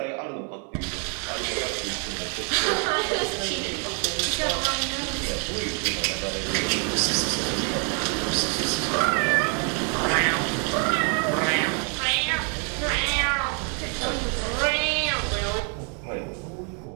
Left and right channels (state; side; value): quieter; left; 39.0 dB